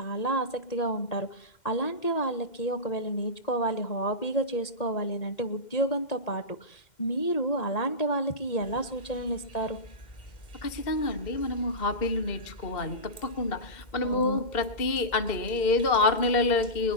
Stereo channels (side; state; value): right; late; 2.1 ms